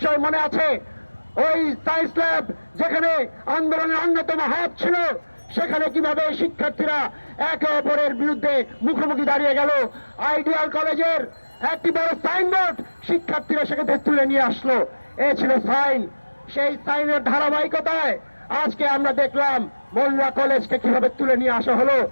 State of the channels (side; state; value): both; inverted; correlation -1.00